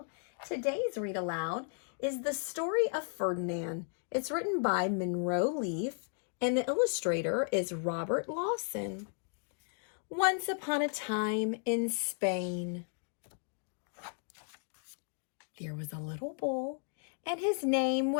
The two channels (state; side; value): silent; right; 55 dB below the other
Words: Today's read aloud is The Story of Ferdinand. It's written by Munro and the illustrator is Robert Lawson. Once upon a time in Spain, there was a little bull, and his name